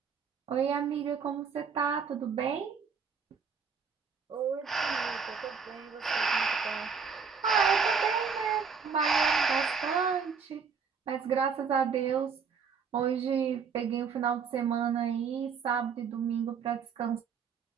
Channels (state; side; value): quieter; left; 6.0 dB